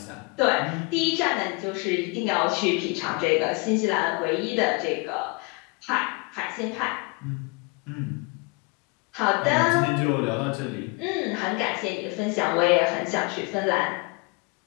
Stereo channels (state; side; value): quieter; right; 29.6 dB